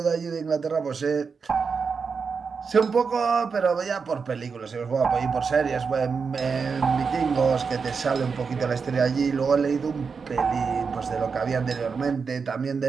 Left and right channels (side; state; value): left; quieter; 5.4 dB